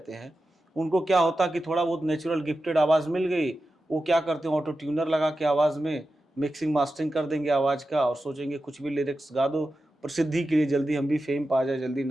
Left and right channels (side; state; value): both; normal; correlation 0.92